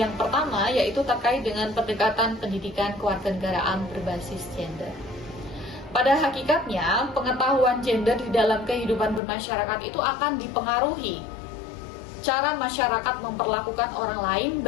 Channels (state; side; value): drops out; right; at 9.2 s